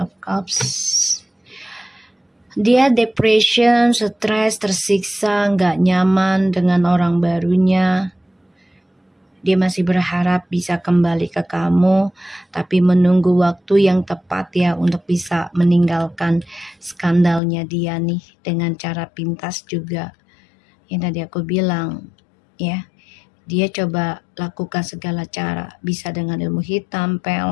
Cups. Dia depression, stres, tersiksa, nggak nyaman dengan orang barunya. Dia masih berharap bisa kembali ke kamu, tapi menunggu waktu yang tepat ya untuk bisa meninggalkan skandalnya dia nih dengan cara pintas juga. Yang tadi aku bilang ya, dia coba lakukan segala cara, bisa dengan ilmu hitam,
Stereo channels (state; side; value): drops out; right; at 17.4 s